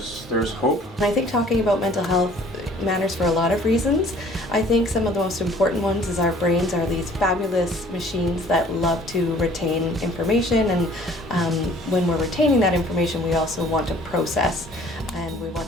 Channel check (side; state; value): both; normal; correlation 0.54